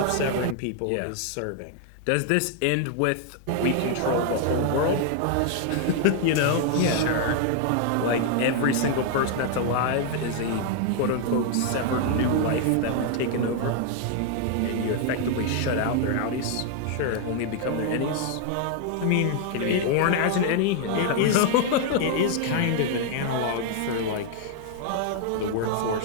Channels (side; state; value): both; different; correlation 0.00